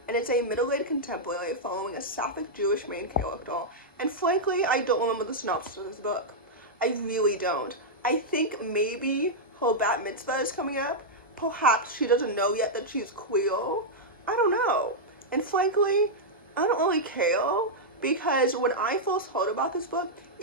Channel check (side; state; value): both; normal; correlation -0.06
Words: and it's a middle-aged contemporary following a sapphic Jewish main character. And frankly, I don't remember the synopsis of this book. I really don't. I think maybe her bat mitzvah is coming up. Perhaps she doesn't know yet that she's queer. I don't know. And frankly, I don't really care, because when I first heard about this book,